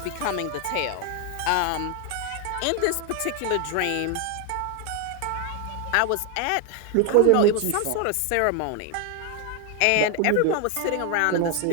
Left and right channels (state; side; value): different; both; correlation 0.01